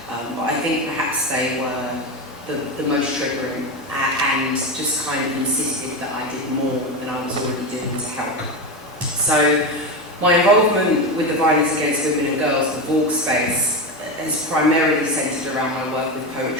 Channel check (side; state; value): both; normal; correlation 0.17